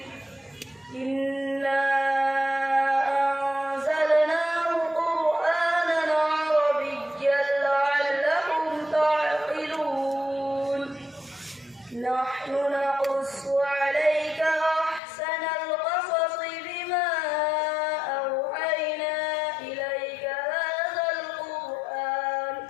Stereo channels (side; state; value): right; drops out; at 15.0 s